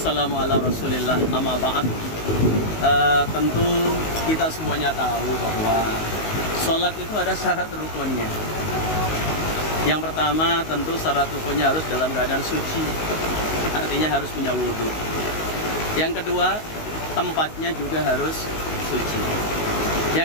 ala rasulillah, amma ba'd. Tentu kita semuanya tahu bahwa sholat itu ada syarat rukunnya. Yang pertama tentu syarat rukunnya harus dalam keadaan suci, artinya harus punya wudhu. Yang kedua, tempatnya juga harus suci.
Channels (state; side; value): late; right; 19 ms